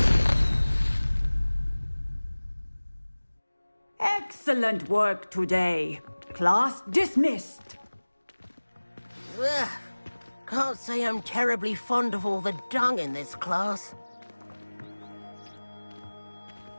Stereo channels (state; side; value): inverted; both; correlation -1.00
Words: Excellent work today. Class dismissed. Ugh. Can't say I'm terribly fond of all the dung in this class.